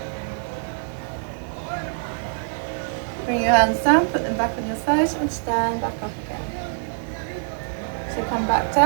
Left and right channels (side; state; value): left; silent; 62 dB below the other